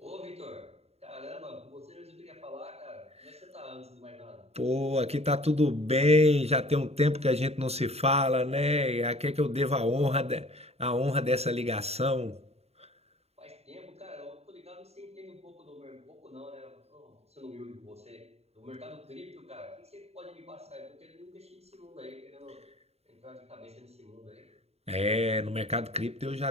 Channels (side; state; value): left; late; 0.30 ms